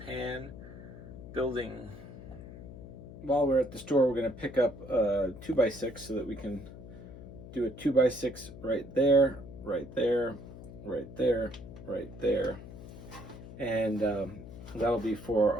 pan building. While we're at the store, we're going to pick up a 2x6 so that we can do a 2x6 right there, right there, right there, right there. And that'll be for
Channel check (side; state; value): left; noise; hum, 14 dB below the sound